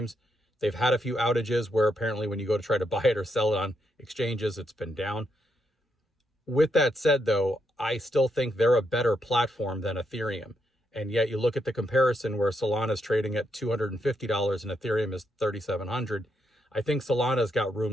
They've had a few outages where apparently when you go to try to buy it or sell it on exchanges, it's been down. With that said, though, I still think they're a better platform than Ethereum. And yet you look at the comparison where Solana is trading at $250 and Ethereum is $3,700. I think Solana's got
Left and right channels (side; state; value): both; normal; correlation 0.80